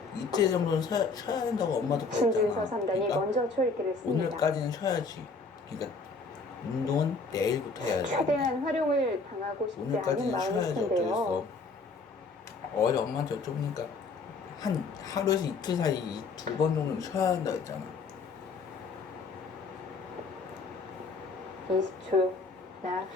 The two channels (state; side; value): quieter; right; 4.2 dB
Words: 이틀 정도는 쉬어야 된다고 엄마도 신진서 그랬잖아. 3단이 그러니까 먼저 초읽기를 씁니다. 오늘까지는 쉬어야지. 그러니까 운동은 내일부터 해야지. 최대한 활용을 당하고 싶지 않은 오늘까지는 마음일 쉬어야지. 텐데요. 어쩌겠어. 어제 엄마한테 여쭤보니까 한 하루에서 이틀 사이 2번 정도는 쉬어야 한다고 했잖아. 20초. 하나,